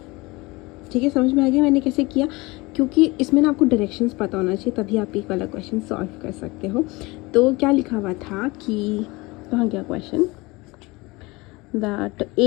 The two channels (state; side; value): quieter; right; 23.3 dB